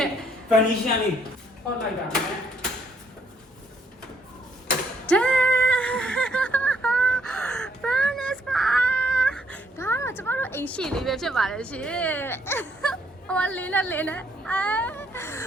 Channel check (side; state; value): both; normal; correlation 0.69